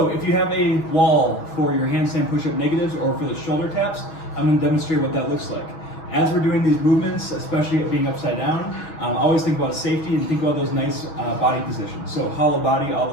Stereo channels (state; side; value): late; right; 6.2 ms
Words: if you have a wall for your handstand push-up negatives or for the shoulder taps, I'm going to demonstrate what that looks like. As we're doing these movements, especially being upside down, always think about safety and think about those nice body positions. So hollow body